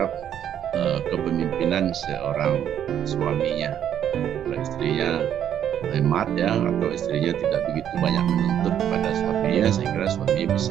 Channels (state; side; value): quieter; left; 9.8 dB